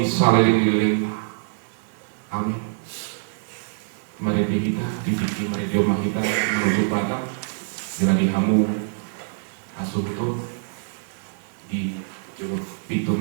saliling-liling. Amin. Mari kita dipikir mari jomah kita menuju pada dengan dihamu asuh tu di juruk pitu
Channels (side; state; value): left; silent; 57 dB below the other